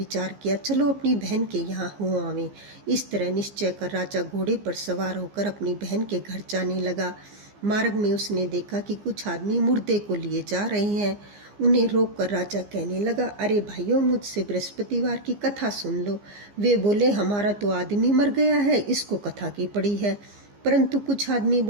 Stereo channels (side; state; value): left; late; 15 ms